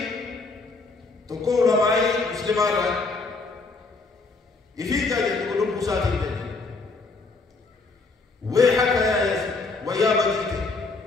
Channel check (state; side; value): quieter; right; 3.8 dB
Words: تقول رمائي مسلمان رأي يفيد جاي تقول بوساتي بيت ويحك يا يزيد ويا بديتي